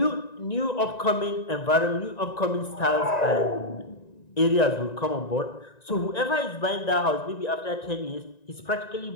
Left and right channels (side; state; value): right; late; 1.9 ms